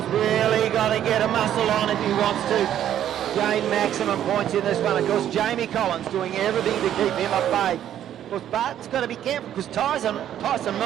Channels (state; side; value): quieter; left; 10.8 dB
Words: really got to get a muscle on if he wants to gain maximum points in this one. Of course, Jamie Collins doing everything to keep him at bay. Of course, Barton's got to be careful because Tyson